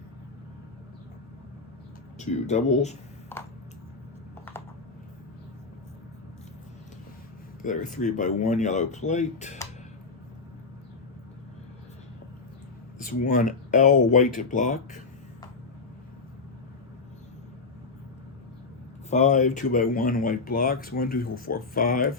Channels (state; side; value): quieter; right; 4.3 dB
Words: 2 doubles. There are 3x1 yellow plate. This 1 L white block. 5 2x1 white blocks. 1, 2, 3, 4,